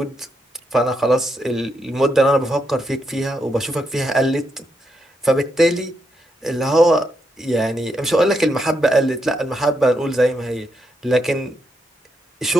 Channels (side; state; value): both; normal; correlation 0.81